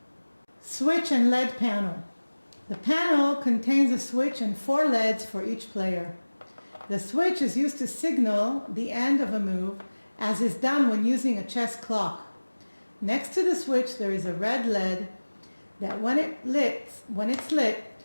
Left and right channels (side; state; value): both; inverted; correlation -1.00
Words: Switch and LED panel. The panel contains a switch and 4 LEDs for each player. The switch is used to signal the end of a move, as is done when using a chess clock. Next to the switch there is a red LED that when it's lit,